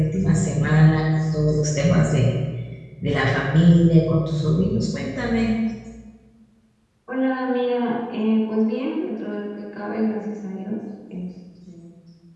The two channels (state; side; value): identical; both; correlation 1.00